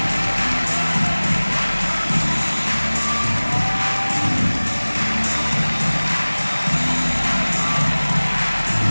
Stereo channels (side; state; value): both; inverted; correlation -1.00